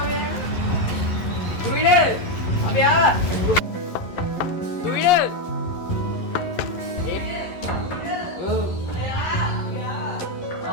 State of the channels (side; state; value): right; late; 11 ms